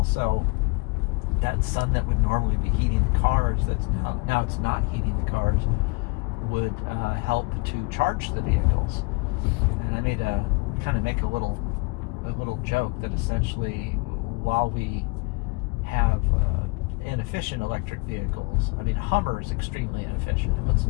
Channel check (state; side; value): quieter; right; 28.6 dB